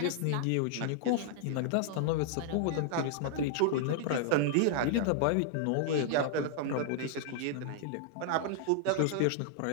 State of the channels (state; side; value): different; both; correlation -0.01